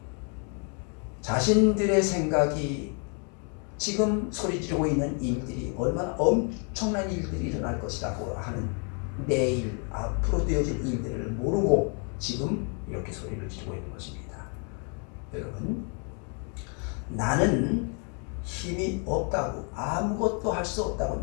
자신들의 생각이 지금 소리 지르고 있는 일들이 얼마나 엄청난 일들이 일어날 것이라고 하는 내일 앞으로 되어질 일들을 모르고 지금 이렇게 소리를 지르고 있는 것입니다. 여러분, 나는 힘이 없다고 아무것도 할 수 없다고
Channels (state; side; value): quieter; right; 39.1 dB